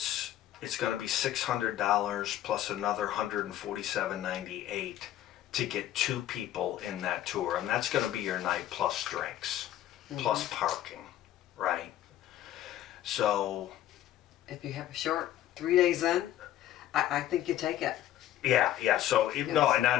going to be $600 plus another $147.98 to get 2 people in that tour, and that's going to be your night plus drinks, plus parking, right? So If you have a short 3 days in, I think you take it. yeah. So no,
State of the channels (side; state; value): right; quieter; 12.9 dB